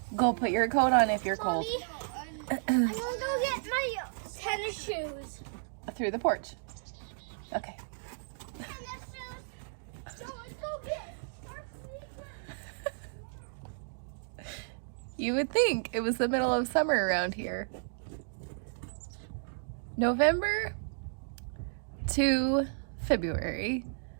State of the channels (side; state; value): left; silent; digital silence